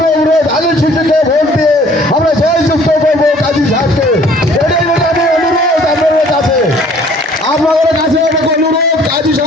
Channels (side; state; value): both; normal; correlation 0.55